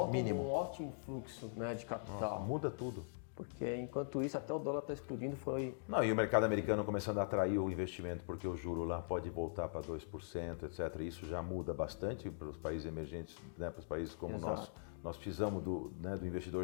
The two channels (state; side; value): silent; right; digital silence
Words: um ótimo fluxo, né, de capital. Muda tudo. Porque enquanto isso, até o dólar está explodindo, Não, e o mercado americano começando a atrair o investimento, porque o juro lá pode voltar para 2%, etc. Isso já muda bastante para os países emergentes, né, para os países como nós. Nós precisamos do